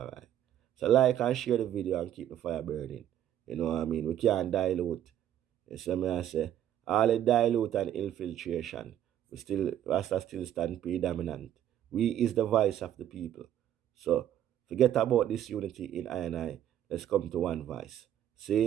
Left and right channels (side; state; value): left; quieter; 11.1 dB